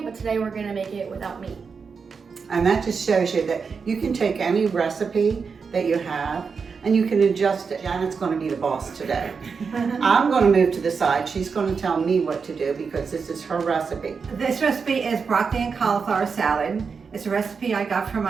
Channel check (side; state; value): left; quieter; 5.5 dB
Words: but today we're going to make it without meat. And that just shows you that you can take any recipe that you have and you can adjust it. Janet's going to be the boss today. I'm going to move to the side. She's going to tell me what to do because this is her recipe. This recipe is broccoli and cauliflower salad. It's a recipe I got from